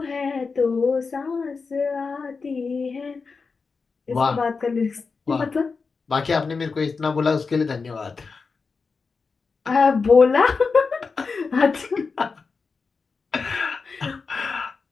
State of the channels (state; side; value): quieter; right; 4.7 dB